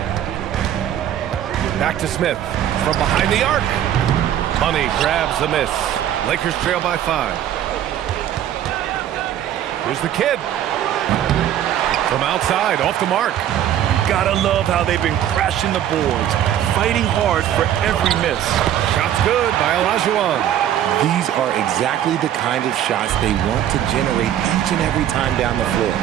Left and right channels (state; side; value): quieter; left; 11.0 dB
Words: Back to Smith from behind the arc. Money grabs the miss. Lakers trail by 5. Here's the kid. From outside, off the mark. Gotta love how they've been crashing the boards, fighting hard for every miss. Shot's good by Olajuwon. These are exactly the kind of shots they want to generate each and every time down the floor.